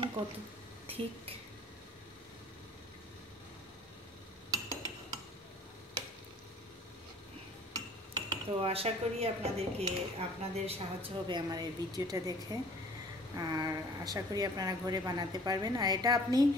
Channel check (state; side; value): normal; both; correlation 0.50